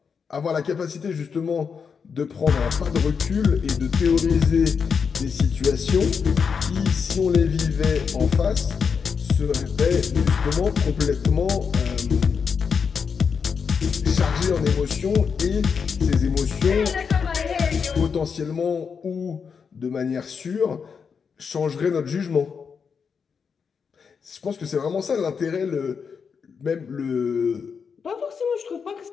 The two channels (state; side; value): quieter; right; 6.1 dB